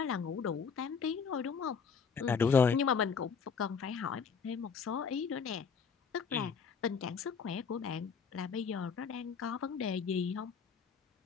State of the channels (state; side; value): quieter; right; 6.0 dB